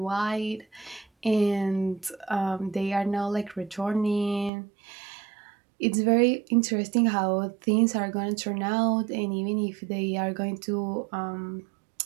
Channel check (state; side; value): drops out; left; at 4.5 s